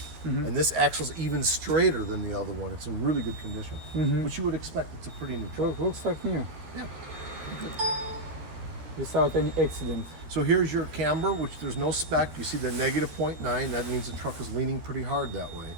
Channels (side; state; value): left; late; 13 ms